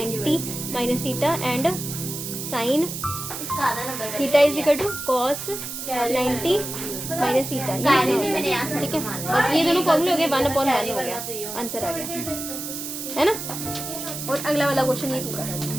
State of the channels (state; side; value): noise; right; hiss, 7 dB below the sound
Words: minus theta and sine theta is equal to cos 90 minus theta. ठीक है, बस ये दोनों फॉर्मूले हो गए, 1/1 हो गया, आंसर आ गया, है ना। और अगला वाला क्वेश्चन ये तू कर,